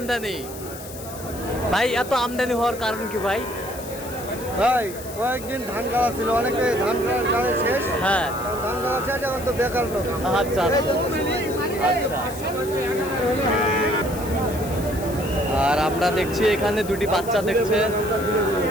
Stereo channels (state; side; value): noise; left; hiss, 14 dB below the sound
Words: ভাই এত আমদানি হওয়ার কারণ কি ভাই? ভাই কয়েকদিন ধান গাড়া ছিল, অনেকে ধান গাড়া শেষ। হ্যাঁ, ধান গাড়া শেষ, এখন তো বেকার লোক। আচ্ছা আচ্ছা। আর আমরা দেখছি এখানে দুটি বাচ্চা দেখছে।